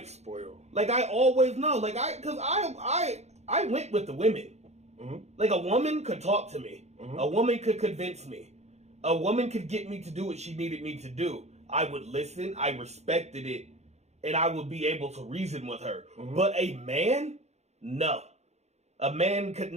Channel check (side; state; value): left; late; 0.32 ms